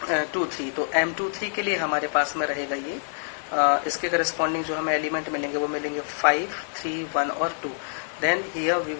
तो M23 के लिए हमारे पास में रहेगा ये इसके करस्पॉन्डिंग जो हमें एलिमेंट मिलेंगे वो मिलेंगे 5, 3, 1 और 2। Then here we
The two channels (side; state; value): right; silent; 61 dB below the other